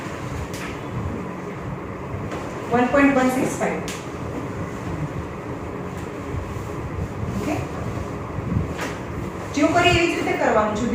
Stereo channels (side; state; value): both; identical; correlation 1.00